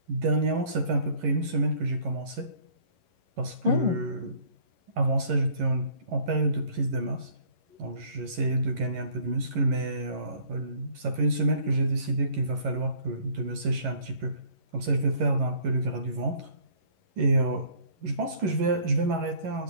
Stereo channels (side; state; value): left; late; 11 ms